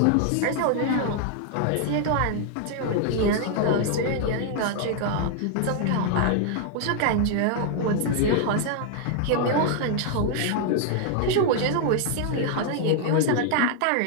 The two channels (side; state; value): both; different; correlation 0.00